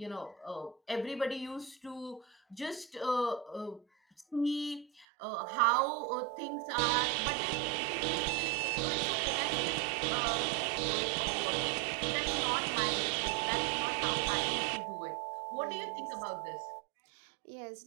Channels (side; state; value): left; drops out; at 5.1 s